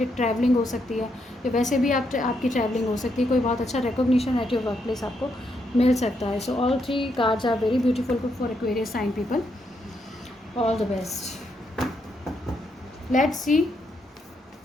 ट्रैवलिंग हो सकती है, या वैसे भी आपकी ट्रैवलिंग हो सकती है। कोई बहुत अच्छा recognition at your workplace आपको मिल सकता है। So all 3 cards are very beautiful for Aquarius sign people. All the best. Let's see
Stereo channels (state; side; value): normal; both; correlation 0.78